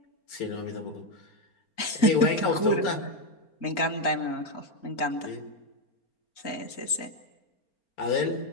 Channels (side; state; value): right; late; 4.4 ms